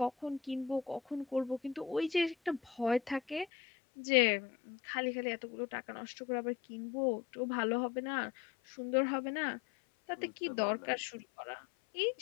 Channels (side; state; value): right; drops out; at 3.5 s